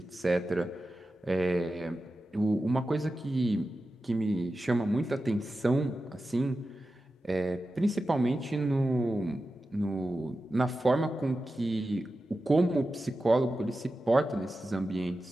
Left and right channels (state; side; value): normal; both; correlation 0.92